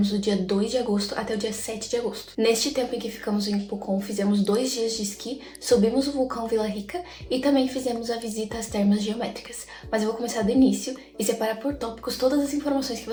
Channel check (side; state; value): both; identical; correlation 1.00